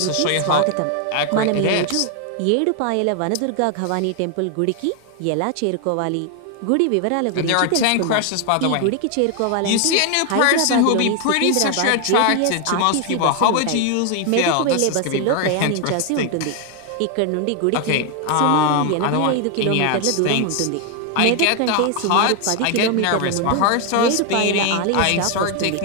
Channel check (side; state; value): both; different; correlation 0.01